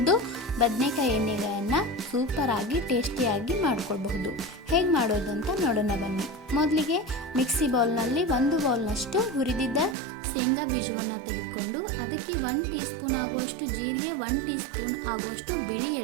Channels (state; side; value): drops out; left; at 10.0 s